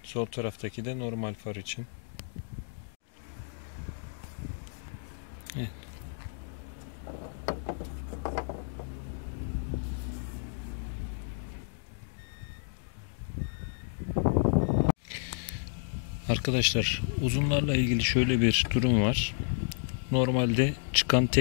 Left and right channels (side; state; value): right; silent; digital silence